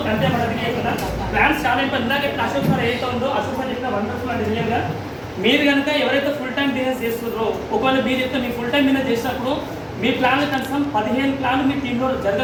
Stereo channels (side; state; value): both; identical; correlation 1.00